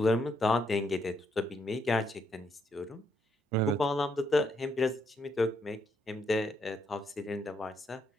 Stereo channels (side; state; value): both; normal; correlation 0.75